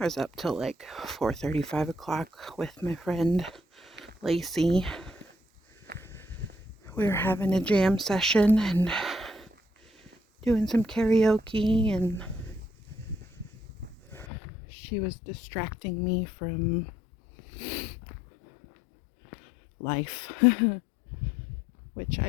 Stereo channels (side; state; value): right; drops out; at 14.2 s